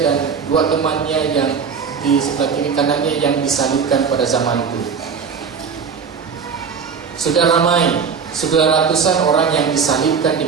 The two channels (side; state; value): left; quieter; 6.1 dB